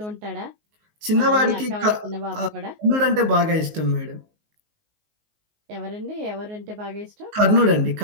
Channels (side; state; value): left; late; 19 ms